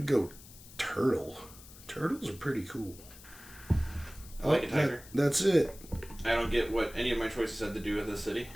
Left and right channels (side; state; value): left; noise; hiss, 19 dB below the sound